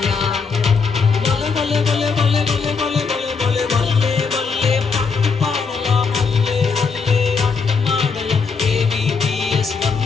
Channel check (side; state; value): right; quieter; 5.1 dB